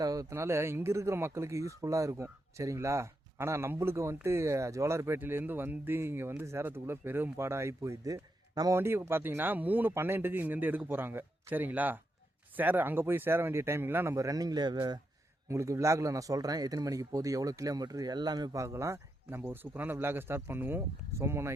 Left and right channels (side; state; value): both; normal; correlation 0.84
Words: ஆகிறதுனால இங்கே இருக்கிற மக்களுக்கு யூஸ்ஃபுல்லாக இருக்கும், சரிங்களா? ஆனால் நம்மளுக்கு வந்துட்டு ஜோலார்பேட்டையிலேருந்து வந்து இங்கே வந்து சேரத்துக்குள்ளே பெரும் பாடாக ஆகி போயிடுது. நம்ம வண்டி பார்த்தீங்கன்னா 3:12 இங்கேருந்து எடுக்க போகிறாங்க, சரிங்களா? அங்கே போய் சேர வேண்டிய டைமிங்லாம் நம்ம ரன்னிங்கில் உங்களுக்கு விளாகில் நான் சொல்கிறேன். எத்தனை மணிக்கு போகுது, எவ்வளோ கிலோமீட்டர் எல்லாமே பார்க்கலாம். நம்ம ஒரு சூப்பரான விளாகை ஸ்டார்ட் பண்ணுவோம்.